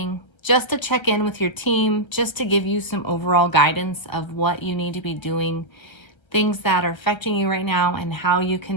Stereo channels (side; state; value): right; late; 1.3 ms